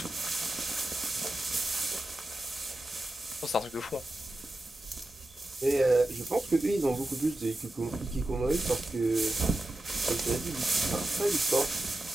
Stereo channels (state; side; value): normal; both; correlation 0.92